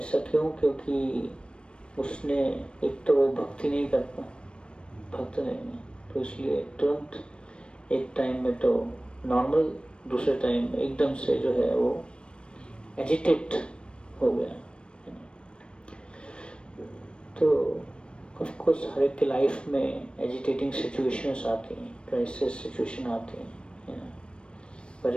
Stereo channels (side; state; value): right; late; 0.057 ms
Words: क्यों? क्योंकि उसने एक तो वो भक्ति नहीं करता, भक्त नहीं है, तो इसलिए तुरंत एक टाइम में तो नॉर्मल, दूसरे टाइम में एकदम से जो है वो एजिटेट हो गया। तो ऑफ कोर्स हर एक की लाइफ में एजिटेटिंग सिचुएशंस आती हैं, क्राइसिस सिचुएशन आती हैं।